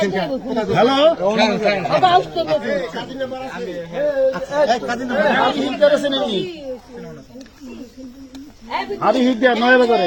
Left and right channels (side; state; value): both; identical; correlation 1.00